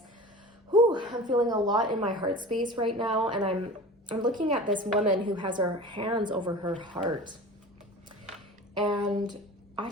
Whew, I'm feeling a lot in my heart space right now, and I'm looking at this woman who has her hands over her heart. And I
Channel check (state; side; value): normal; both; correlation 0.37